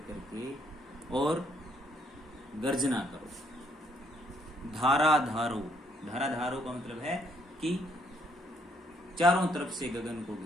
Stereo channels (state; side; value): normal; both; correlation 0.70